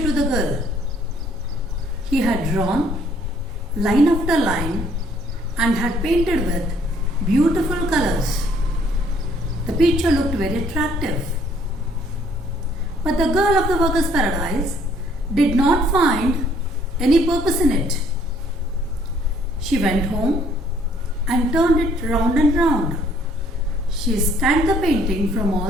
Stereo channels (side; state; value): both; normal; correlation 0.63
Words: the girl. He had drawn line after line and had painted with beautiful colors. The picture looked very attractive. But the girl of the workers' paradise did not find any purpose in it. She went home and turned it round and round. She scanned the painting from